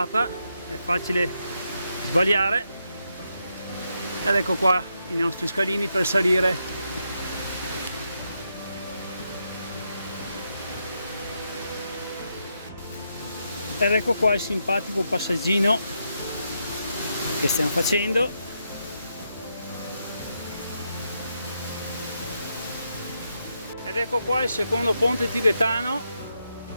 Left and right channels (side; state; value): both; inverted; correlation -0.82